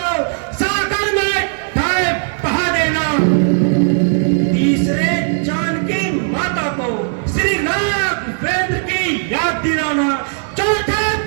सागर में बहा देना, तीसरे जानकी माता को श्री राघवेंद्र की याद दिलाना, चौथे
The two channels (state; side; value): silent; left; digital silence